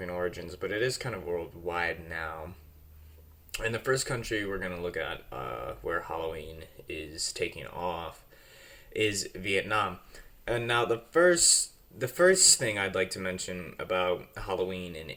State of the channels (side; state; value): both; identical; correlation 1.00